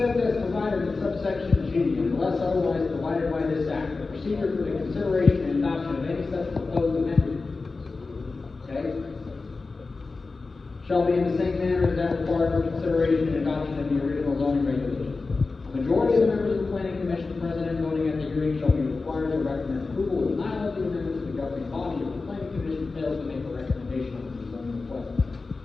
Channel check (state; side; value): quieter; right; 3.9 dB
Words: as provided in subsection G, unless otherwise provided by this act, the procedure for the consideration and adoption of any such proposed amendment, okay, shall be in the same manner as that required for consideration and adoption of the original zoning regulation. A majority of the members of the Planning Commission present and voting at the hearing shall be required to recommend approval of denial of the amendment to the governing body if the Planning Commission fails to make a recommendation on the zoning request.